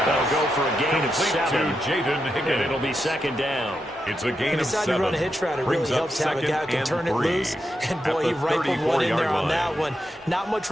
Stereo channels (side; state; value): both; normal; correlation 0.85